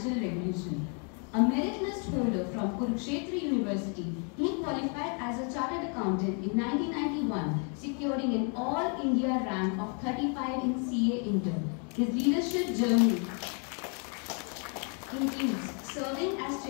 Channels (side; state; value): right; quieter; 39.6 dB